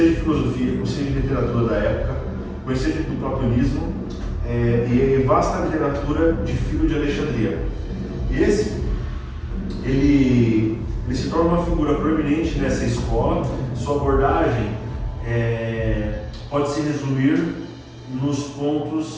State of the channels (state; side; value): identical; both; correlation 1.00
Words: de filosofia, conhecia de literatura da época, conhecia do platonismo, e vasta literatura de Filho de Alexandria. E ele se torna uma figura proeminente nessa escola. Sua abordagem pode se resumir nos